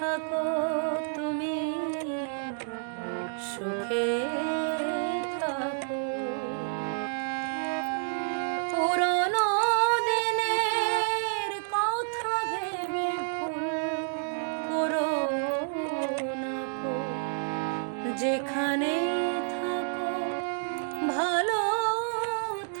তুমি, সুখে থাকো। পুরনো দিনের কথা ভেবে ভুল করো না গো। যেখানে থাকো ভালো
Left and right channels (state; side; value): silent; left; digital silence